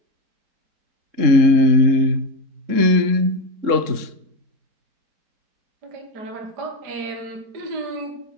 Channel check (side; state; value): left; late; 3.7 ms